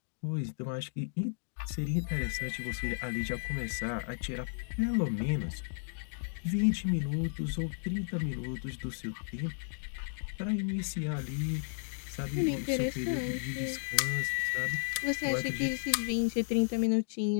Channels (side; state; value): right; silent; digital silence